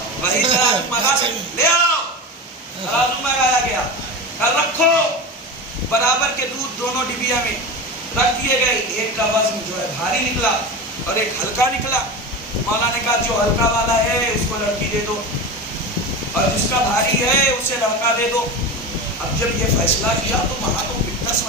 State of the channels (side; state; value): both; normal; correlation 0.25